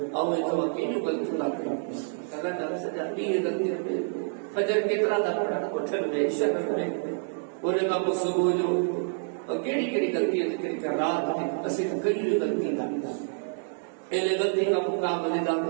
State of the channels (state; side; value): silent; left; 59 dB below the other